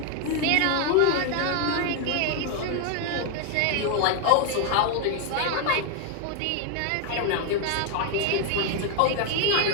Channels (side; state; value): both; different; correlation 0.01